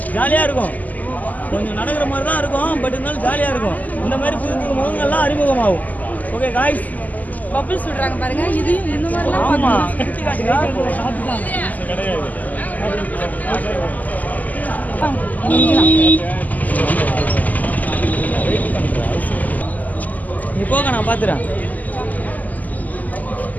ஜாலியாக இருக்கும். கொஞ்சம் நடக்கிற மாதிரி தான் இருக்கும், பட் இருந்தாலும் ஜாலியாக இருக்கும். இந்த மாதிரி புது புது முகங்கள்லாம் அறிமுகமாகும். ஓகே காய்ஸ், பபிள்ஸ் விடுறாங்க பாருங்க. இது இந்த மாதிரிலாம் ஆமாம். நீ போக, நான் பார்த்துறேன்.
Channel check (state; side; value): late; right; 0.079 ms